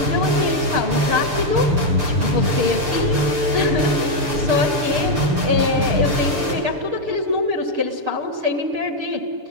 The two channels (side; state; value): left; late; 6.7 ms